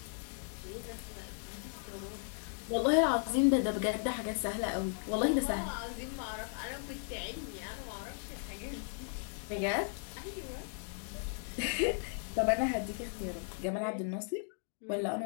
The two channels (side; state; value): right; silent; 54 dB below the other